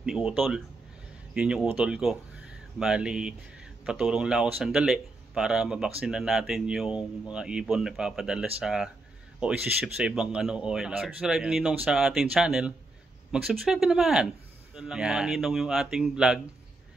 Utol. Yun yung utol ko. Bali, patulong lang ako sandali para mabaksinan natin yung mga ibon na papadala sa o isi-ship sa ibang OLR. Subscribe Ninong sa ating channel, mag-subscribe ka naman. Doon lang mga Ninong yung ating vlog.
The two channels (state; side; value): quieter; left; 3.0 dB